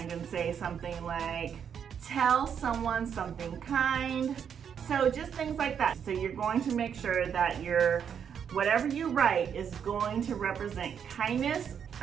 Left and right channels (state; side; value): quieter; left; 7.8 dB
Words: and say something like, tell someone something kind. So just things like that. So you're going to make sure that whatever you write is going to represent kindness.